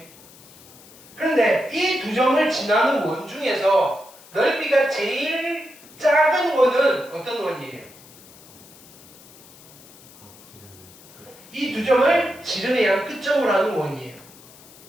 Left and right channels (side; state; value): left; noise; hiss, 22 dB below the sound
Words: 그런데 이 두 점을 지나는 원 중에서 넓이가 제일 작은 원은 어떤 원이에요? 이 두 점을 지름의 끝점으로 하는 원이에요.